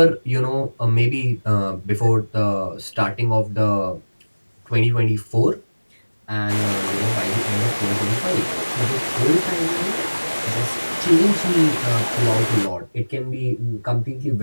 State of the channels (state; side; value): inverted; both; correlation -1.00